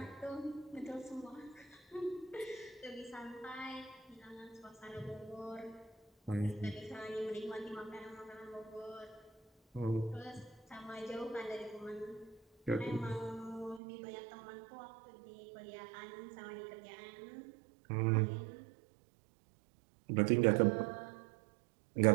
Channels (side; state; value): left; drops out; at 13.8 s